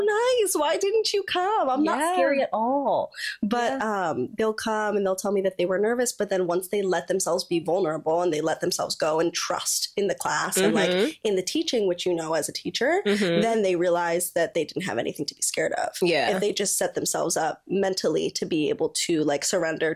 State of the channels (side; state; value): both; identical; correlation 1.00